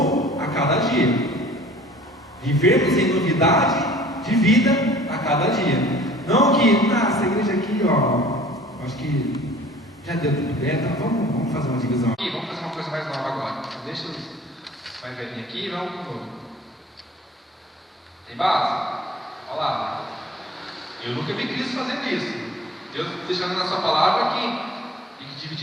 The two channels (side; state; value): both; normal; correlation 0.49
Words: a cada dia. Vivermos em novidade de vida a cada dia. Não que, essa igreja aqui, acho que já deu tudo bem, então vamos fazer uma divisão aqui, vamos fazer uma coisa mais nova agora. Deixa os mais velhinhos aqui, vamos pro novo. Tem base? Olha lá. Eu nunca vi Cristo fazendo isso. Deus deixando na sua palavra que tem que